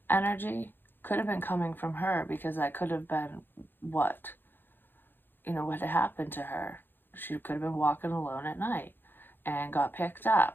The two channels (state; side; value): late; right; 0.098 ms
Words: energy could have been coming from her, because that could have been what, you know, what had happened to her. She could have been walking alone at night and got picked